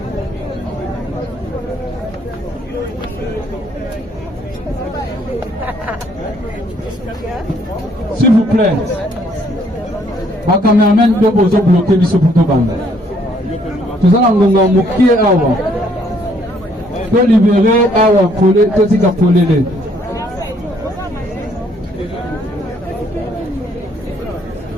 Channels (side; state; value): both; normal; correlation 0.66